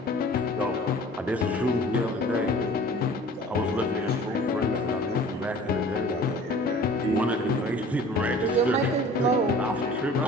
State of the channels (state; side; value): normal; both; correlation 0.46